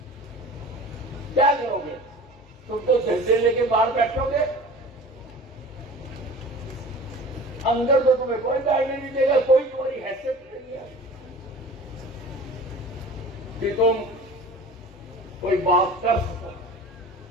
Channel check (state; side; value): normal; both; correlation 0.40